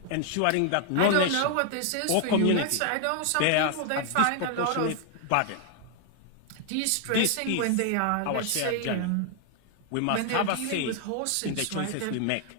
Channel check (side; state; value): both; different; correlation 0.00